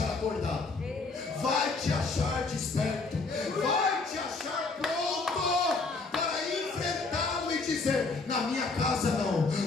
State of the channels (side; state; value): right; quieter; 3.8 dB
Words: acordado, vai te achar desperto, vai te achar pronto para enfrentá-lo e dizer: na minha casa não,